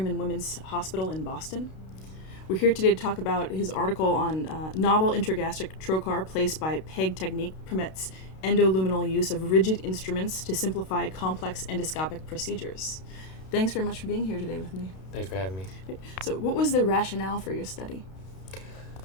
and Women's Hospital in Boston. We're here today to talk about his article on novel intragastric trocar placed by PEG technique permits endolumenal use of rigid instruments to simplify complex endoscopic procedures. Thanks very much for being here today with me. Thanks for having me. So what was the rationale for your study?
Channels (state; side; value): late; right; 32 ms